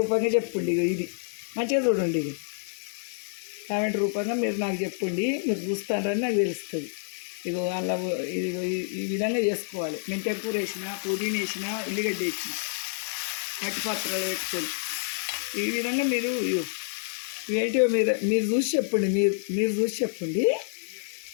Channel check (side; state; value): right; silent; 59 dB below the other